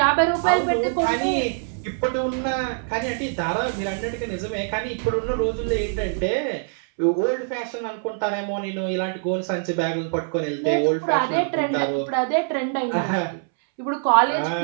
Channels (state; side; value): silent; left; 63 dB below the other